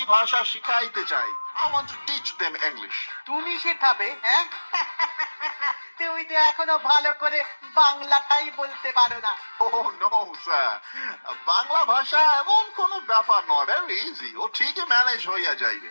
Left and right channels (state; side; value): inverted; both; correlation -1.00